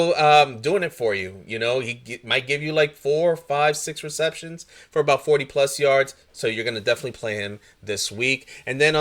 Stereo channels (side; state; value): both; identical; correlation 1.00